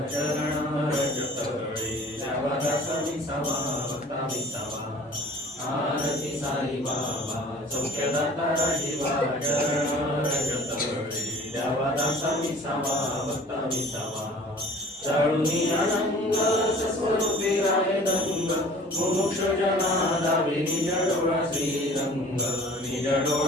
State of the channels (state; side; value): normal; both; correlation 0.48